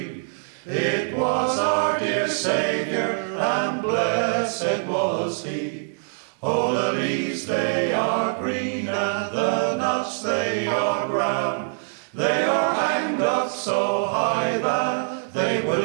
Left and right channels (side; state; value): left; silent; digital silence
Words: It was our dear Saviour, and blessed was he. Oh, the leaves they are green, and the nuts they are brown. They are hanged up so high that they